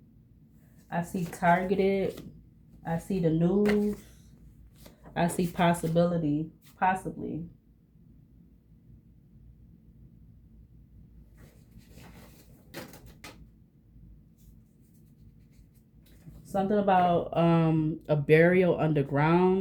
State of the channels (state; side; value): identical; both; correlation 1.00